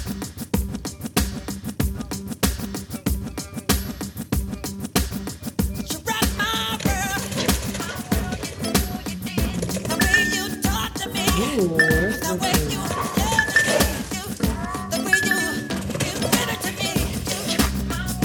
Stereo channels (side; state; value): both; identical; correlation 1.00